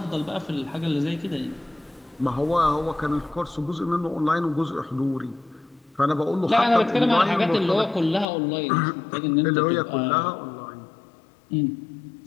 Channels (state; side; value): drops out; right; at 8.2 s